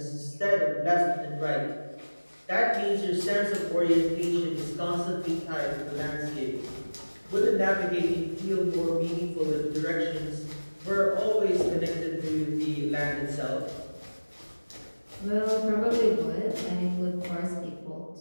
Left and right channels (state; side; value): inverted; both; correlation -1.00